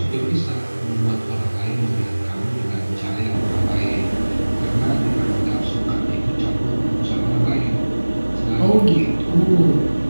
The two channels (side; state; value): both; inverted; correlation -1.00